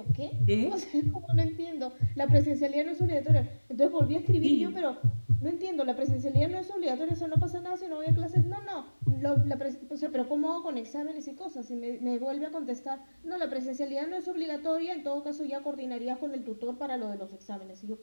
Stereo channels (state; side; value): inverted; both; correlation -1.00